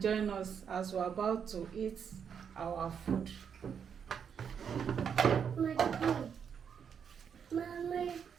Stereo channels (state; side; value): quieter; left; 7.3 dB